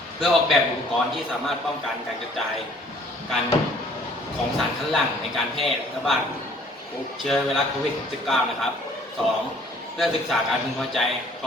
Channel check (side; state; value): both; normal; correlation 0.56